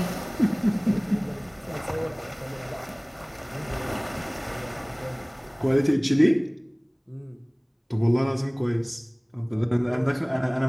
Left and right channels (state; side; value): identical; both; correlation 1.00